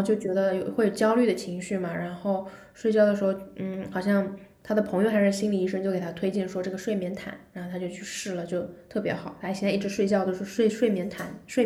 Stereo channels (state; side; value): identical; both; correlation 1.00